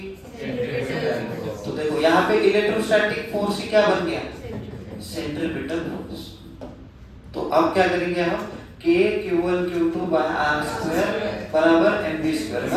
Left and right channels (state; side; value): identical; both; correlation 1.00